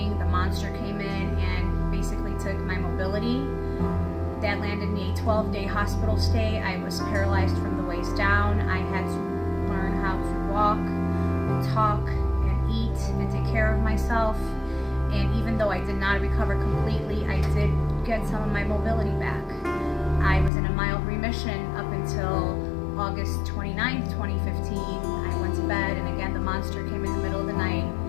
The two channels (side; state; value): right; drops out; at 20.5 s